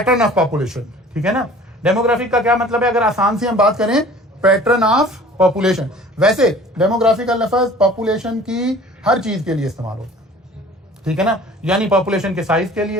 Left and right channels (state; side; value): normal; both; correlation 0.47